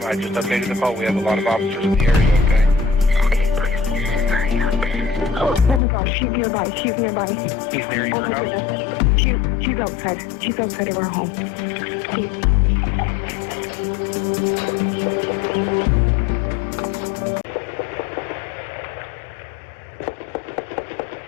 I just updated the call. We have a lot of officers in the area, okay? Okay, please hurry up. Oh my gosh, she's nearby. She's nearby. He's near your house? She's outside. She's outside of our home. Please.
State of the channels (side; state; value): right; drops out; at 5.8 s